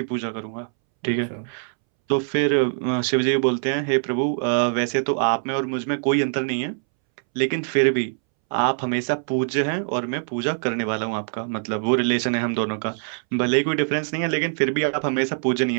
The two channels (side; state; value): left; silent; 63 dB below the other